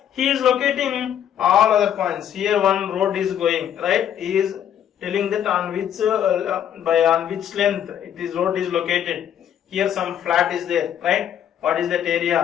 he is locating all other points. Here one road is going, right? He is telling that on which length road is located. Here some flat is there, right? What is that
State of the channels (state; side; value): quieter; right; 9.8 dB